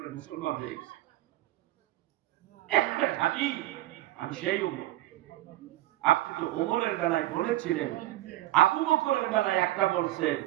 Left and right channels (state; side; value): quieter; left; 15.9 dB